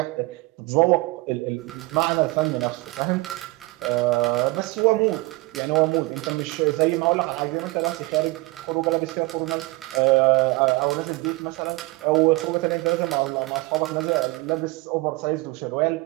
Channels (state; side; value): quieter; left; 23.1 dB